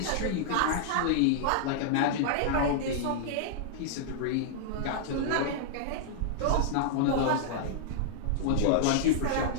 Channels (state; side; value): different; both; correlation -0.01